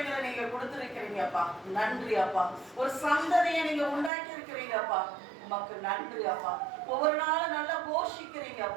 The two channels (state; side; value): drops out; left; at 4.1 s